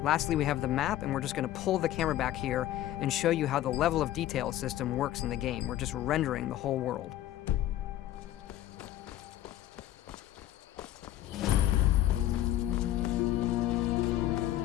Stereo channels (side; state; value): right; quieter; 13.4 dB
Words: Lastly, we have the map, and we're just going to pull the camera back here and show you how the level of detail system works in the game. We're just rendering the whole world.